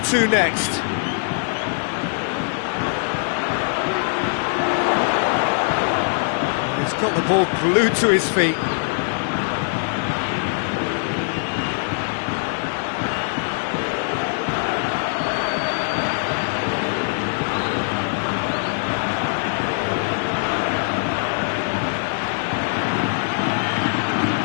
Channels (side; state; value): right; silent; digital silence